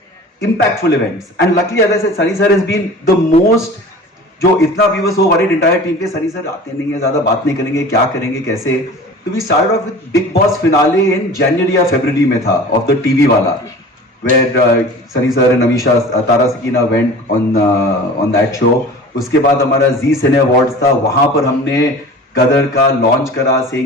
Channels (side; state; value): both; normal; correlation 0.40